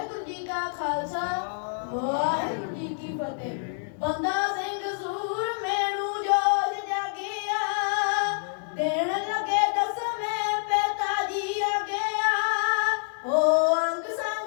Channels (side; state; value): right; silent; 60 dB below the other